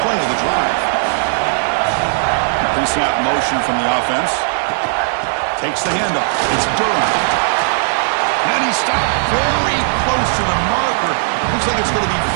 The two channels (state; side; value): silent; left; digital silence